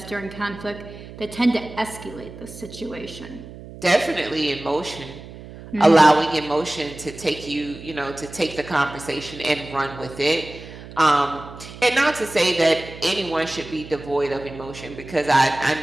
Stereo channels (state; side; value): noise; right; hum, 15 dB below the sound